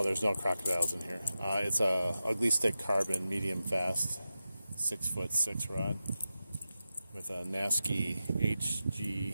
There's no crocodiles in here. It's a ugly stick carbon medium fast 6'6" rod with a Nasky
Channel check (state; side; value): inverted; both; correlation -0.92